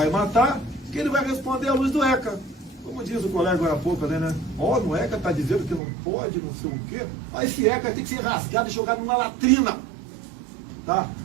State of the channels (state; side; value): drops out; left; at 5.8 s